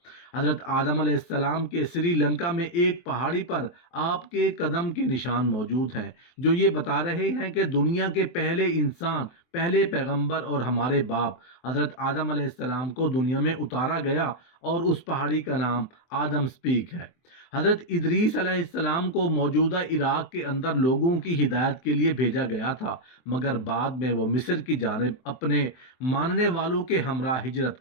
حضرت آدم علیہ السلام کے سری لنکا میں ایک پہاڑی پر آپ کے قدم کے نشان موجود ہیں جو یہ بتا رہے ہیں کہ دنیا کے پہلے انسان، پہلے پیغمبر اور ہمارے باپ حضرت آدم علیہ السلام کو دنیا میں اتارا گیا اور اس پہاڑی کا نام آدم سپیک ہے۔ حضرت ادریس علیہ السلام کو موجودہ عراق کے اندر لوگوں کی ہدایت کے لیے بھیجا گیا تھا، مگر بعد میں وہ مصر کی جانب اپنے ماننے والوں کے ہمراہ ہجرت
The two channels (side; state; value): right; late; 23 ms